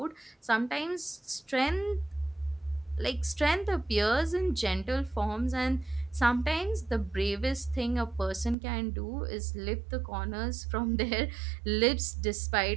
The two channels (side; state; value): left; drops out; at 8.6 s